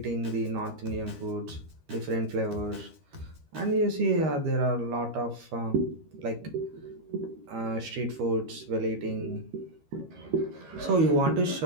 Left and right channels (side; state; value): left; late; 13 ms